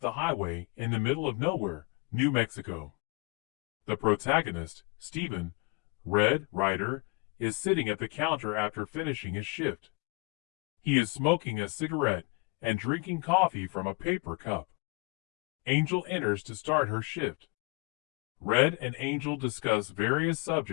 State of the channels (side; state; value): right; quieter; 28.2 dB